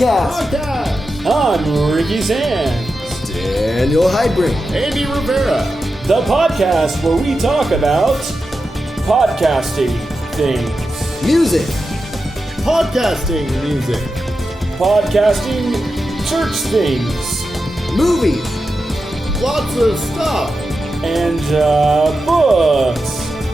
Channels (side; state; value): both; normal; correlation 0.90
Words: I'm Ricky Sands. Daniel Heidbrink. Andy Rivera. The podcast where we talk about podcasting things. Music. Podcasting music. Podcasting church things. Movies. Lots of stuff. And books.